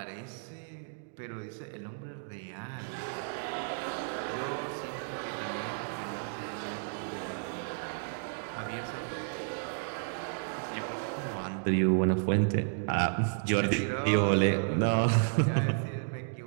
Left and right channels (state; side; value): silent; left; digital silence